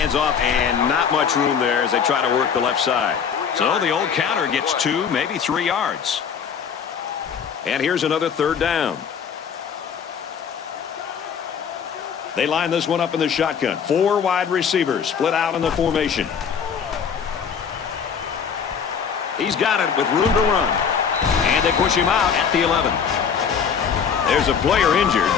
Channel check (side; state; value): right; quieter; 7.0 dB